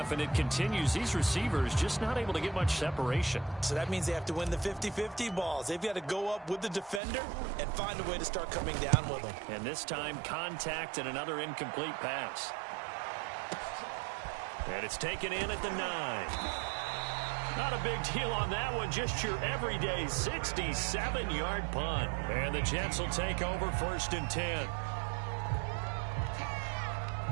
and it continues. These receivers just not able to get much separation. So that means they have to win the 50-50 balls. They've got to go up with the defender and find a way to start coming down with them. And this time, contact and another incomplete pass. And it's taken in at the 9. Not a big deal on that one. Just your everyday 67-yard punt. And the Jets will take over 1st and 10.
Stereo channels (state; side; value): drops out; left; at 7.0 s